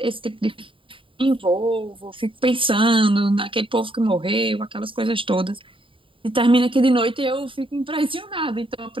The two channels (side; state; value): left; late; 0.25 ms